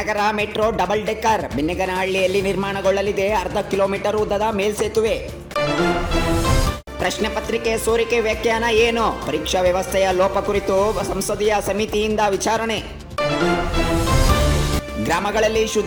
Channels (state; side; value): identical; both; correlation 1.00